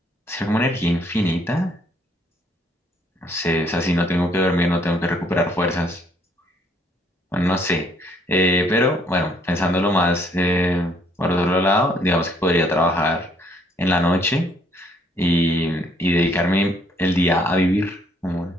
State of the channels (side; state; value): both; normal; correlation 0.65